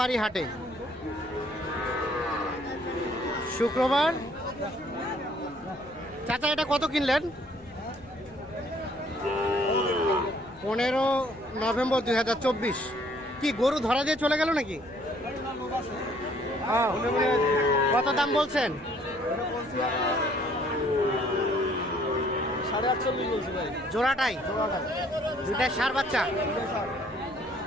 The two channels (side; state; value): left; noise; hum, 26 dB below the sound